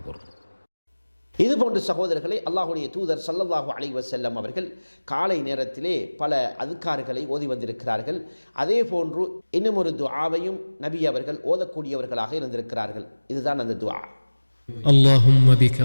இது போன்ற சகோதரர்களை அல்லாஹ்வுடைய தூதர் ஸல்லல்லாஹு அலைஹி வஸல்லம் அவர்கள் காலை நேரத்திலே பல அதுக்கார்களை ஓதி வந்திருக்கிறார்கள். அதே போன்று இன்னும் ஒரு துஆவையும் நபி அவர்கள் ஓதக்கூடியவர்களாக இருந்திருக்கிறார்கள். இதுதான் அந்த துஆ. اللهم بك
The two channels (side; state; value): both; inverted; correlation -1.00